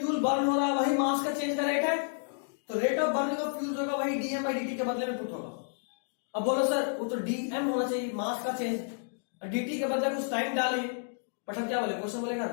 बर्न हो रहा है वही मास का चेंज का रेट है, तो rate of burning of fuel जो होगा वही डीएम बाई dt के बदले में पुट होगा। अब बोलो सर वो तो डीएम होना चाहिए मास का चेंज, dt के बदले कुछ टाइम डाले, बट हम क्या बोले, क्वेश्चन बोलेगा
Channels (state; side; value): silent; right; digital silence